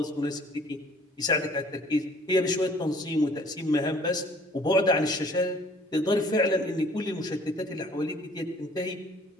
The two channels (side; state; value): both; normal; correlation 0.55